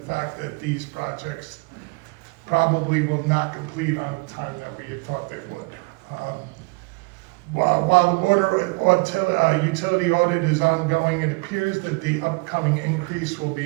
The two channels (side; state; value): left; quieter; 28.6 dB